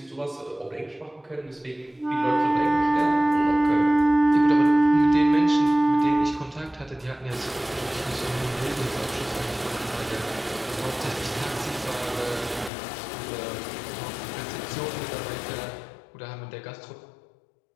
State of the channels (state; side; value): drops out; right; at 12.7 s